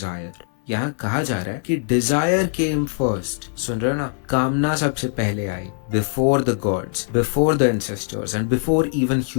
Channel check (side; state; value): right; silent; 64 dB below the other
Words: यहाँ कहा जा रहा है कि डिजायर केम फर्स्ट। सुन रहे हो ना, कामना सबसे पहले आई। Before the gods, before the ancestors and before even